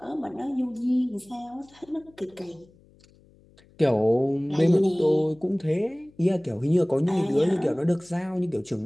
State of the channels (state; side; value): noise; left; hum, 29 dB below the sound